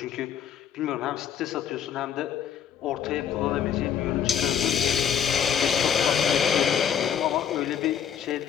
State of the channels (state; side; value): quieter; right; 8.6 dB